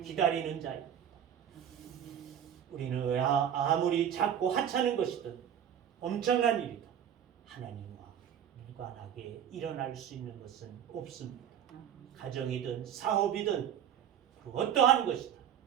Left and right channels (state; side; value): quieter; left; 9.4 dB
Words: 기다리는 자입니다. 우리는 아무리 작고 하찮은 것이든 엄청난 일이든 하나님과 무관하게 일어날 수 있는 것은 없습니다. 가정이든 사업이든 그 어떠한 것이든